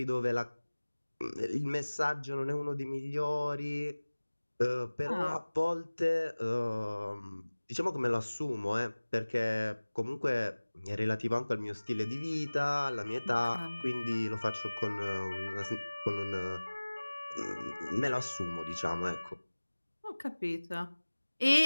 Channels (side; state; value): both; inverted; correlation -1.00